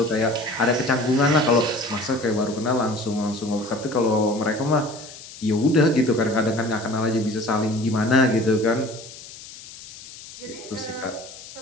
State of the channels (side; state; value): left; noise; hiss, 16 dB below the sound